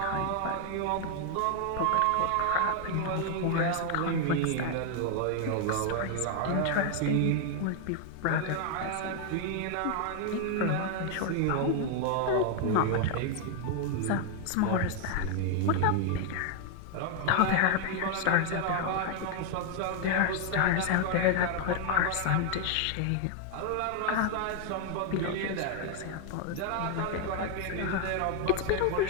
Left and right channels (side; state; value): both; different; correlation 0.00